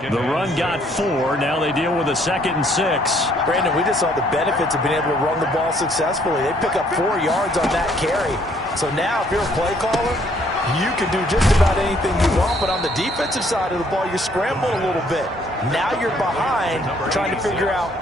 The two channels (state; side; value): normal; both; correlation 0.65